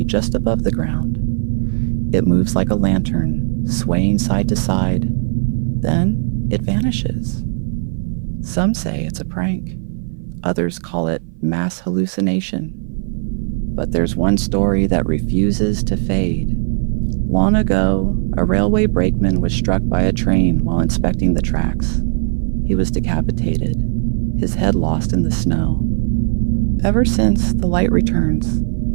just above the ground. It moves like a lantern, swaying side to side. Then it vanishes. Some say it's a prank. Others call it mass hallucination. But there's one story that refuses to fade. Long ago, a railway brakeman was struck by a train while inspecting the tracks. He was decapitated, his head lost in the snow. Ever since, the light returns.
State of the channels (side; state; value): left; silent; 57 dB below the other